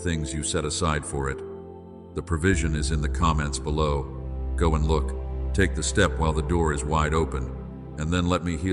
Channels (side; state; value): both; identical; correlation 1.00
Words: you set aside for it. The provision is in the comments below. Go and look. Take the step while the door is wide open, and then let me